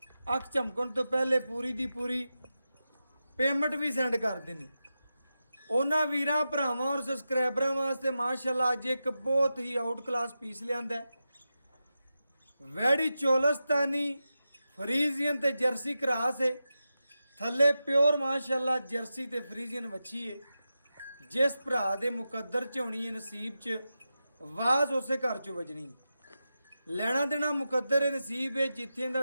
ਅੱਖ ਝਮਕਣ ਤੋਂ ਪਹਿਲੇ ਪੂਰੀ ਦੀ ਪੂਰੀ ਪੇਮੈਂਟ ਵੀ ਸੈਂਡ ਕਰਦੇ ਨੇ। ਉਹਨਾਂ ਵੀਰਾਂ ਭਰਾਵਾਂ ਔਰ ਸਬਸਕ੍ਰਾਈਬਰਾਂ ਵਾਸਤੇ ਮਾਸ਼ਾਅੱਲਾ ਅੱਜ ਇੱਕ ਬਹੁਤ ਹੀ ਆਊਟ ਕਲਾਸ ਪੀਸ ਲਿਆਂਦਾ। वैड़ी चोलस्तानी फ्रीजियन ते जर्सी क्रास है, थले प्योर माशाअल्लाह जर्सी ते फ्रीजियन वच्छी है। जिस भरा दे मुकद्दर च होनी है नसीब च वाज उसे घर चो वजनी। लेना देना मुकद्दर है नसीब है, जिथे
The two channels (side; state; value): both; inverted; correlation -0.91